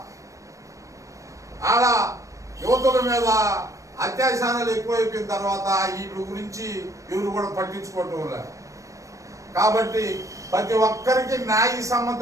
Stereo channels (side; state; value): left; late; 0.16 ms